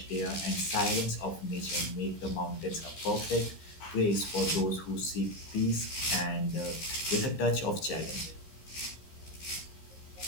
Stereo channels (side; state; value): right; late; 15 ms